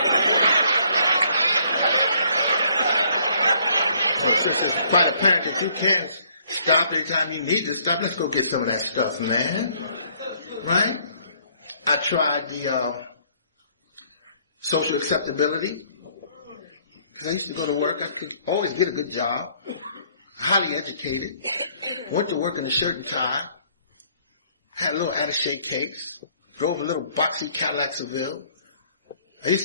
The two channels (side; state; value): both; inverted; correlation -0.63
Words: Well, since it's quite apparent that you can stop anytime you need to stop, let's go get some of that stuff, man. Right? I tried the social acceptability. Because I used to go to work. I could always get a good job. Highly educated. Went to work in a shirt and tie. Had a little attaché case. Drove a little boxy Cadillac Seville. I used